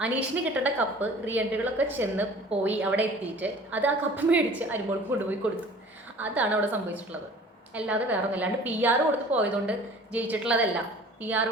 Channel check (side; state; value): both; normal; correlation 0.47